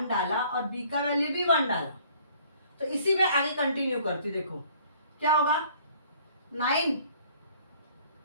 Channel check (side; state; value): both; inverted; correlation -0.57